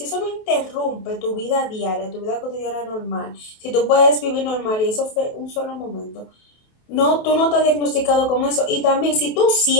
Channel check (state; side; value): late; right; 28 ms